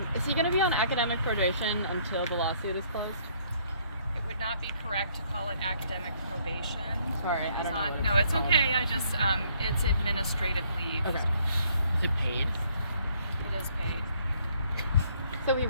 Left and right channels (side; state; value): both; inverted; correlation -0.65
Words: Is he going to be on academic probation until the lawsuit is closed? It would not be correct to call it academic probation. Sorry, I don't know. What No, it's okay. I just, it's administrative leave. Okay. Is he paid? It is paid. So he